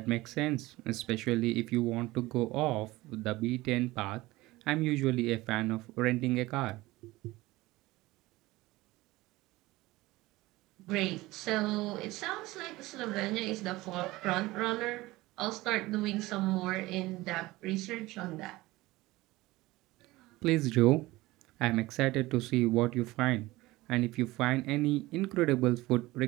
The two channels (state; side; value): quieter; left; 19.4 dB